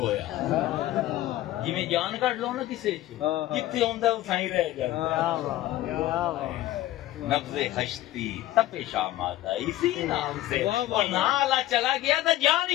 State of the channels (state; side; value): quieter; right; 15.0 dB